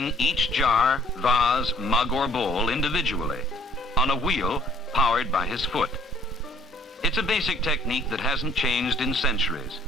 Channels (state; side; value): normal; both; correlation 0.59